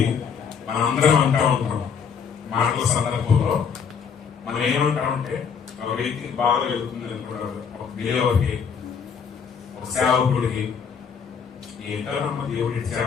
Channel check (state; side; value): quieter; right; 6.6 dB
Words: మనందరం అంటా ఉంటాం మాటల సందర్భంలో, మనం ఏమంటామంటే ఒక వ్యక్తికి బాధ వెళ్తుంది అనుకుంటారు, ఒక బిలేవర్కి, ఒక సేవకుడికి, ఏంటో నమ్మ దేవుడు ఇచ్చి